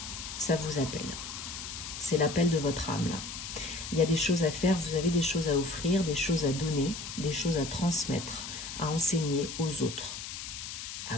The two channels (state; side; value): noise; left; hiss, 8 dB below the sound